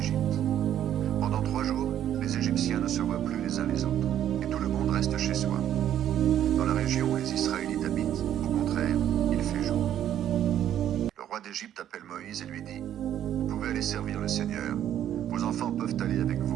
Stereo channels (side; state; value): left; quieter; 10.9 dB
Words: Pendant 3 jours, les Égyptiens ne se voient plus les uns les autres, et tout le monde reste chez soi. Dans la région où les Israélites habitent, au contraire, il fait jour. Le roi d'Égypte appelle Moïse et lui dit, « Vous pouvez aller servir le Seigneur. Vos enfants peuvent aller avec